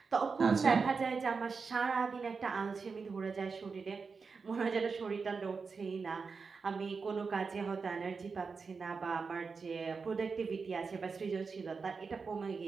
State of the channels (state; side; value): quieter; left; 4.9 dB